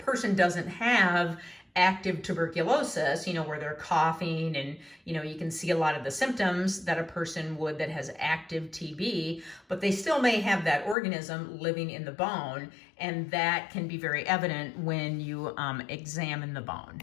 doesn't have active tuberculosis, where they're coughing and, you can see a lot of the symptoms that a person would that has active TB, but they still may have that organism living in the bone, and that can be very evident when you examine the bone.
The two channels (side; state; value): right; drops out; at 11.0 s